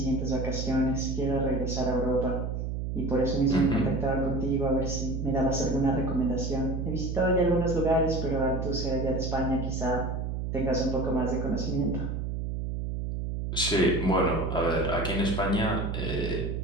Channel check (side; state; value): right; noise; hum, 3 dB below the sound